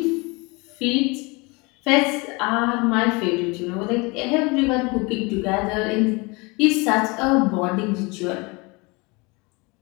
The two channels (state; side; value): quieter; right; 26.9 dB